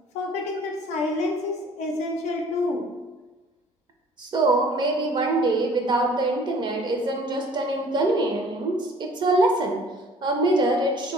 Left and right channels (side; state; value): both; normal; correlation 0.52